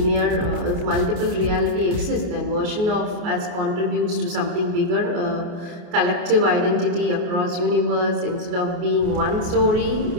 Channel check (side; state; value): left; late; 28 ms